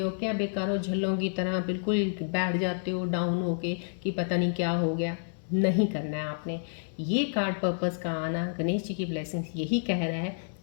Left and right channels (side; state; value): right; silent; digital silence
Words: क्या बेकारों झल्लों की तरह बिल्कुल बैठ जाते हो डाउन होके कि पता नहीं क्या हो गया। नहीं करना है आपने। ये कार्ड पर्पस का आना, गणेश जी की ब्लेसिंग्स यही कह रहा है,